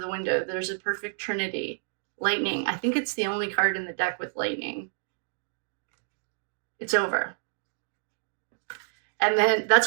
window. There's a perfect trinity. Lightning. I think it's the only card in the deck with lightning. It's over. And then, that's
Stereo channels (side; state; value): left; silent; digital silence